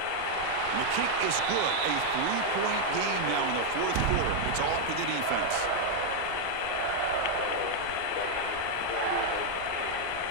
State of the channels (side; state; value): both; different; correlation 0.00